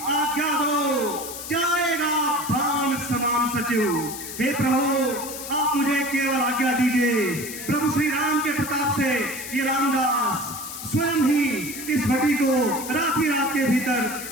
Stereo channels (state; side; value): noise; left; hiss, 9 dB below the sound